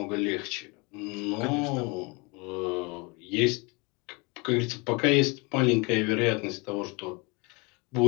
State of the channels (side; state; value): right; quieter; 28.5 dB